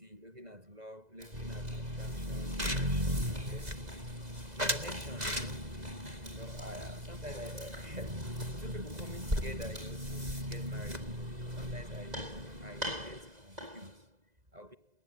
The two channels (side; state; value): left; late; 2.0 ms